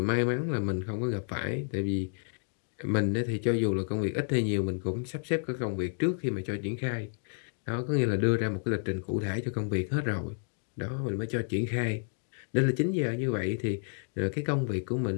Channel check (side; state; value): right; silent; 57 dB below the other